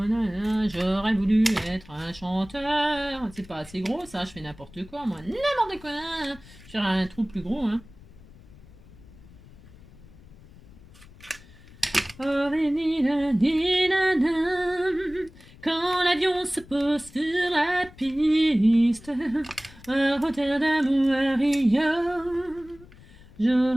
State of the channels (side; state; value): left; noise; rumble, 22 dB below the sound